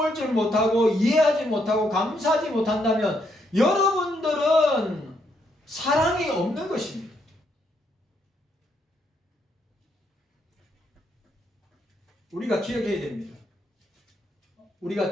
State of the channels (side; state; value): both; normal; correlation 0.75